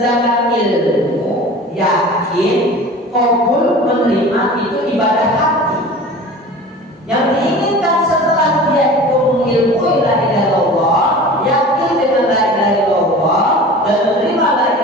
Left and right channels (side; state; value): both; normal; correlation 0.39